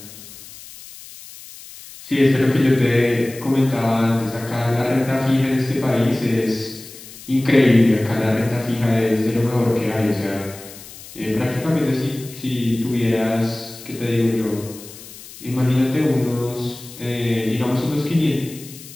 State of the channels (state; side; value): noise; left; hiss, 17 dB below the sound